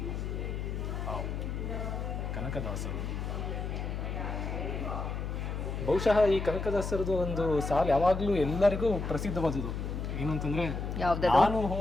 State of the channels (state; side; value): noise; left; hum, 4 dB below the sound